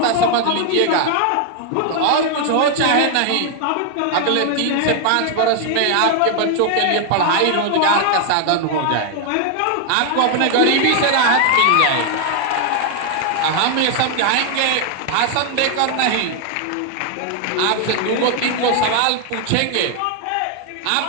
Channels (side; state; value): both; different; correlation 0.00